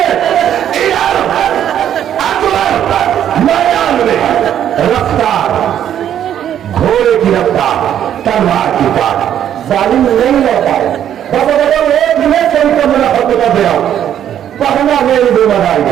अकबर मैदान में रफ्तार, घोड़े की रफ्तार, तलवार की तार, जालिम नहीं रह पाए। एक मिनट से उनको मेरा हक बता दे रहा हूं, पढ़ना मेरी जिम्मेदारी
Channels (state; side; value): quieter; left; 10.2 dB